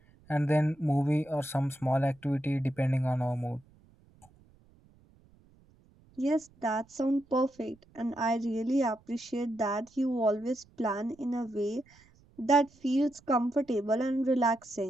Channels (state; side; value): noise; right; rumble, 29 dB below the sound